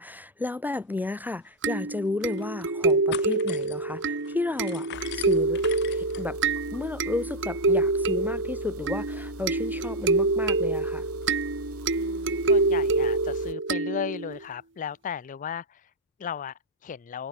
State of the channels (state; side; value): normal; both; correlation 0.01